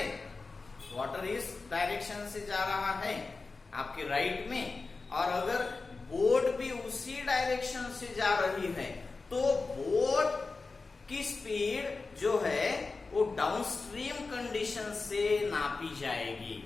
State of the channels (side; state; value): right; quieter; 4.0 dB